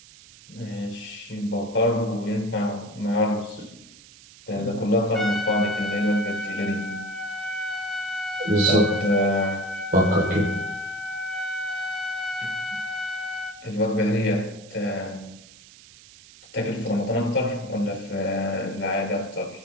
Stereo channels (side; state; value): right; noise; hiss, 21 dB below the sound